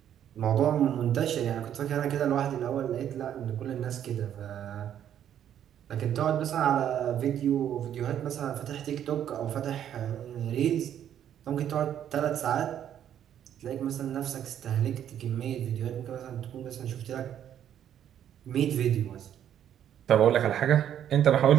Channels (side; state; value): left; quieter; 10.1 dB